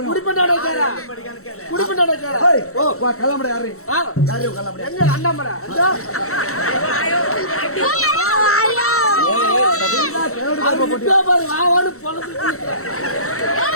குடிப்பண்டாட கேரா. குடிப்பண்டாட கேரா. ஏய், வா கிளம்புற யாரு? யாரு கிளம்புற? எங்க அண்ணாமலை? அதோ. அது இப்ப பாரு வாவான்னு பொளந்து.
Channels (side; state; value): right; late; 0.64 ms